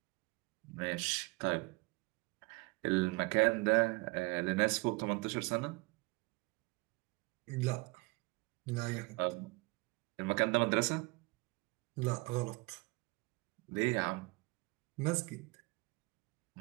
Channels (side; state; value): left; quieter; 26.4 dB